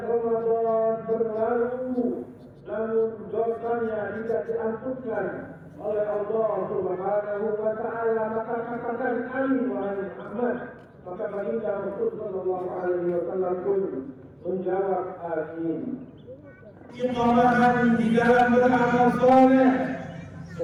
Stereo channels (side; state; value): both; identical; correlation 1.00